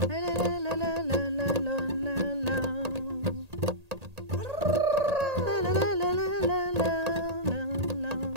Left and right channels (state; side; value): late; left; 1.8 ms